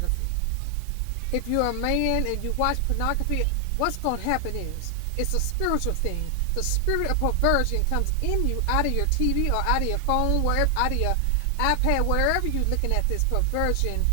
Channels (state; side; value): different; both; correlation 0.00